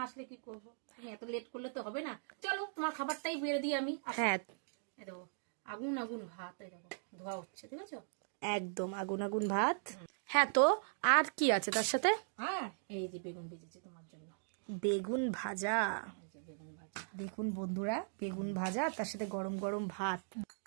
আসলে কি করবো? তুমি এত লেট করলে তো হবে না। চলো তোমার খাবারটাই বেড়ে দিই আমি। হ্যাঁ এই দেখো আগুন আগুন ভাত, এই দেখো ধোয়া হচ্ছে, ঠিক আছে? একদম আগুন আগুন ভাত। হ্যাঁ, তো আর কি আছে তার সাথে? হ্যাঁ, এই যে বেগুন ভেজেছি তোমার জন্য। বেগুন ভাজা। এই যে বেগুন ভাজা, দেখুন বন্ধুরা, বেগুন ভাজা তার সাথে গরম গরম ভাত।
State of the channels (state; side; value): silent; left; digital silence